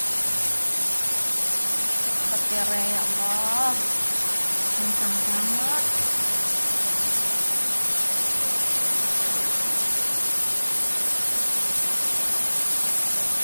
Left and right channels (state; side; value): inverted; both; correlation -1.00